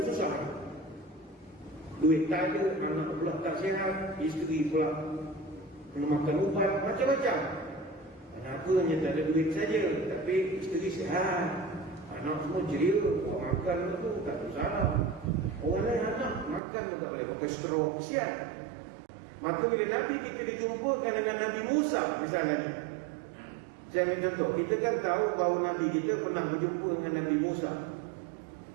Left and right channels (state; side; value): drops out; left; at 16.6 s